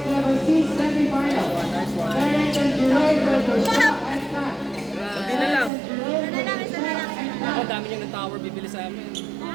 level C semifinal. Terence and Jerome versus Shaq and Pat. Hindi na lang. Isa na lang. Ako, dami niya ng tower bibili sa amin.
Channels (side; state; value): left; drops out; at 5.7 s